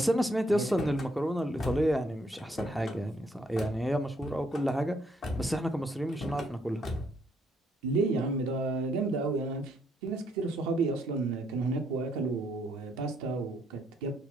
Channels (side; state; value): both; normal; correlation 0.71